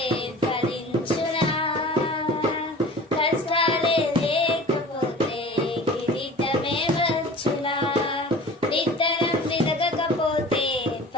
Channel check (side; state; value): both; normal; correlation 0.41